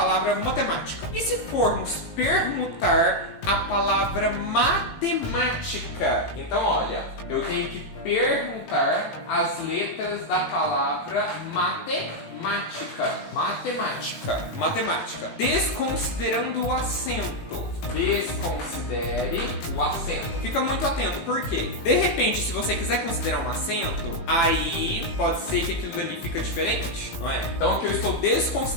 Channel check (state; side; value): late; right; 18 ms